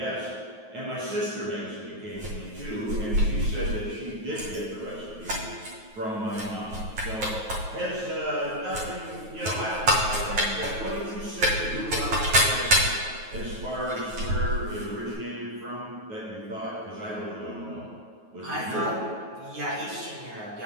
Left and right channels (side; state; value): left; late; 9.3 ms